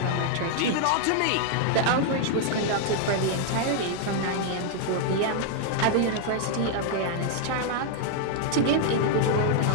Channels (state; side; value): different; both; correlation 0.00